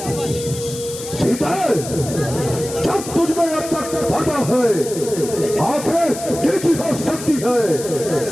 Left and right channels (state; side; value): noise; left; hiss, 11 dB below the sound